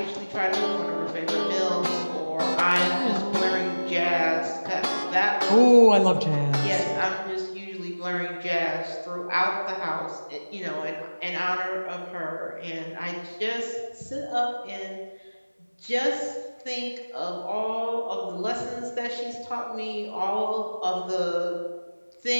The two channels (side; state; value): both; inverted; correlation -1.00